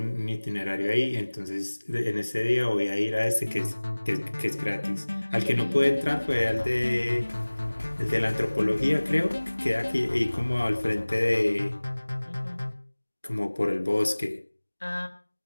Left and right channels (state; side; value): inverted; both; correlation -1.00